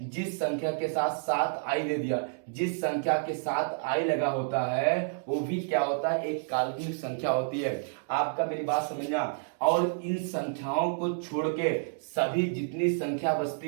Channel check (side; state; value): left; silent; digital silence